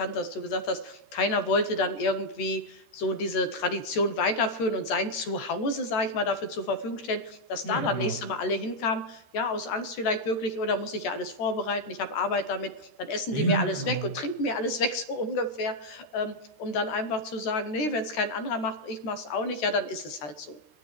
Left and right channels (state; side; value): late; right; 13 ms